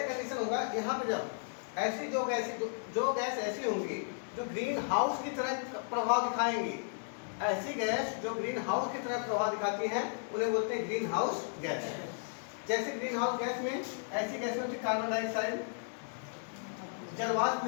कंडीशन होगा यहाँ पे, जब ऐसी जो गैस ऐसी होंगी जो ग्रीन हाउस की तरह प्रभाव दिखाएंगी, ऐसी गैस जो ग्रीन हाउस की तरह प्रभाव दिखाती है उन्हें बोलते हैं ग्रीन हाउस गैस। जैसे ग्रीन हाउस गैस में ऐसी गैस होती है कार्बन डाइऑक्साइड, जलवाष्प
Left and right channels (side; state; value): right; silent; digital silence